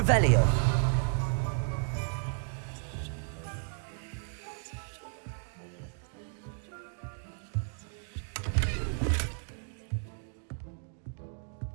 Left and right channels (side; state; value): left; silent; 56 dB below the other